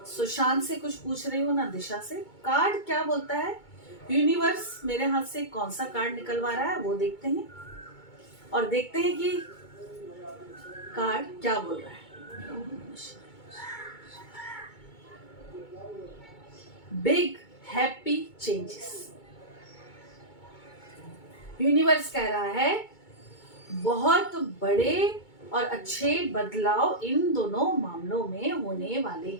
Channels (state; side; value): late; right; 2.2 ms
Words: सुशांत से कुछ पूछ रही हूं ना दिशा से। कार्ड क्या बोलता है, यूनिवर्स मेरे हाथ से कौन सा कार्ड निकलवा रहा है वो देखते हैं, और देखते हैं कि कार्ड क्या बोल रहा है। Big happy changes. यूनिवर्स कह रहा है बहुत बड़े और अच्छे बदलाव इन दोनों मामलों में होने वाले